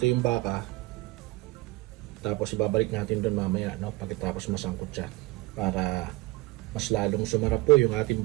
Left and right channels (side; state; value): left; quieter; 20.0 dB